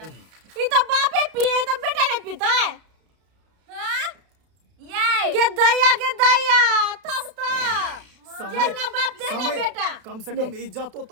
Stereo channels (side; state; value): left; late; 32 ms